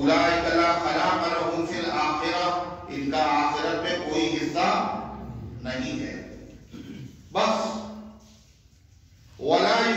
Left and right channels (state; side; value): identical; both; correlation 1.00